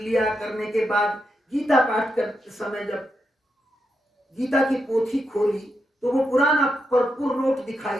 करने के बाद गीता पाठ करते समय जब गीता की पोथी खोली तो वो पुराना भरपूर नोट दिखाई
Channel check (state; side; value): normal; both; correlation 0.84